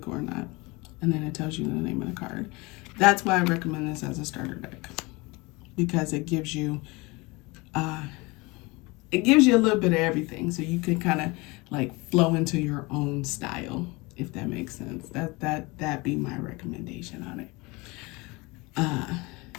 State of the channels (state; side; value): quieter; right; 24.8 dB